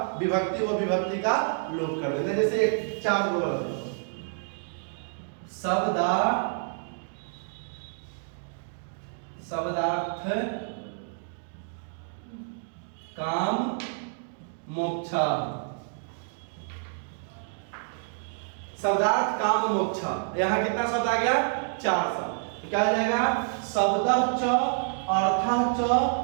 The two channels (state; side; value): silent; left; 59 dB below the other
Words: विभक्ति वो विभक्ति का लोप कर देते हैं। जैसे एक 4 दो शब्दार्थ काम मोक्षा, शब्दार्थ काम मोक्षा, यहाँ कितना शब्द आ गया, 4 शब्द। तो क्या हो जाएगा, शब्दः च, अर्थः च,